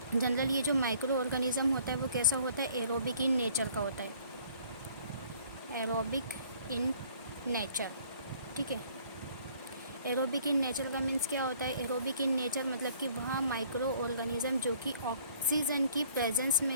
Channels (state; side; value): inverted; both; correlation -0.57